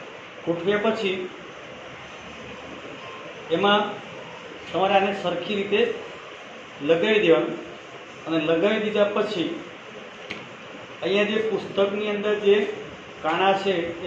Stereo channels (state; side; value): identical; both; correlation 1.00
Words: ગોઠવ્યા પછી એમાં તમારે આને સરખી રીતે લગાવી દેવાનું. અને લગાવી દીધા પછી અહીંયા જે પુસ્તકની અંદર જે કાણા છે